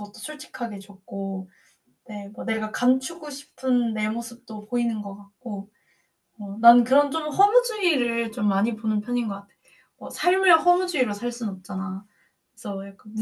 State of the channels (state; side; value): identical; both; correlation 1.00